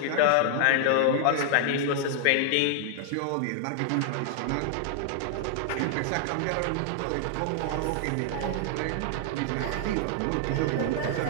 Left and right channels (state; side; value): different; both; correlation -0.01